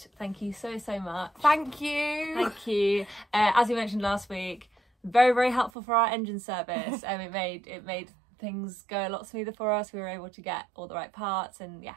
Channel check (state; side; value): drops out; left; at 5.7 s